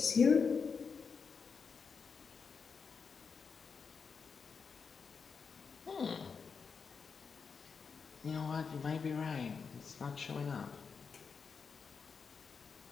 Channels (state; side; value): quieter; right; 5.6 dB